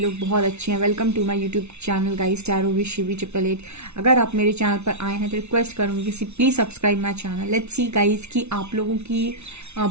बहुत अच्छे हैं। Welcome to my YouTube channel guys, tarot with Shivi 888। अगर आप मेरे चैनल पर आए हैं तो रिक्वेस्ट करूंगी कि please subscribe my channel. Let's see guys कि आप लोगों की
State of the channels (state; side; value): late; left; 0.81 ms